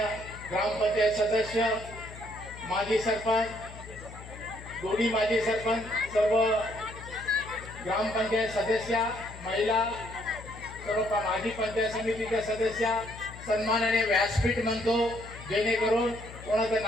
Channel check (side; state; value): left; noise; hum, 15 dB below the sound